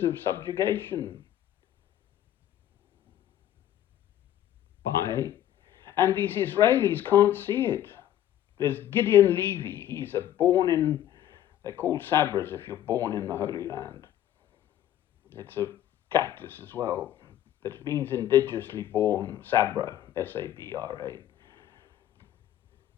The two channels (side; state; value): right; quieter; 11.8 dB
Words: of subjugation. And these Israelis can't see it. There's Gideon Levy. He's they're called Sabras if you're born in the Holy Land. It's a cactus as well. That means indigenously born, Sabra, S-A-B-R-A.